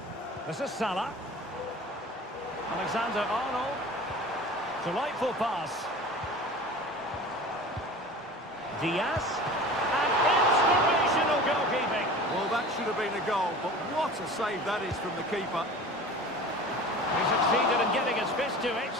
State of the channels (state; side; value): normal; both; correlation 0.38